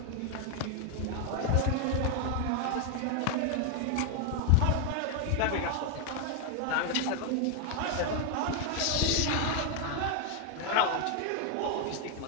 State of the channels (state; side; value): different; both; correlation 0.01